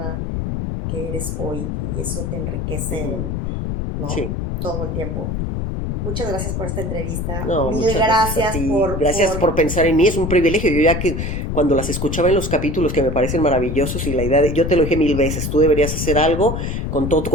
que eres hoy y eso te enriquece, ¿no? Sí. Todo el tiempo. Muchas gracias por esta entrevista. No, Mil gracias por pensar en mí, es un privilegio. Yo ya que cuando las escuchaba en los capítulos que me parecen maravillosos y la idea yo te lo dije 1000 veces, tú deberías hacer algo con todo tu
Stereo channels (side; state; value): left; noise; rumble, 3 dB below the sound